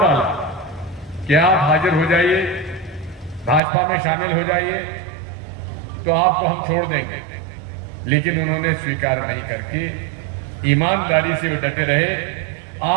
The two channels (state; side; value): drops out; left; at 3.6 s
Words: डाला कि आप हाजिर हो जाइए, भाजपा में शामिल हो जाइए तो आपको हम छोड़ देंगे। लेकिन उन्होंने स्वीकार नहीं करके ईमानदारी से वो डटे रहे।